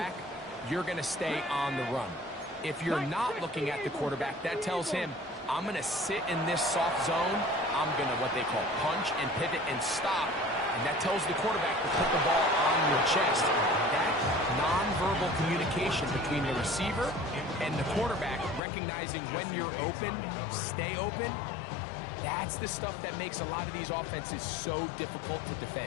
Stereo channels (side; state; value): right; drops out; at 18.6 s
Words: you're going to stay on the run. If you're not looking at the quarterback, that tells him, I'm going to sit in this soft zone. I'm going to what they call punch and pivot and stop. And that tells the quarterback to put the ball on your chest. That nonverbal communication between the receiver and the quarterback, recognizing when you're open, stay open, that's the stuff that makes a lot of these offenses so difficult to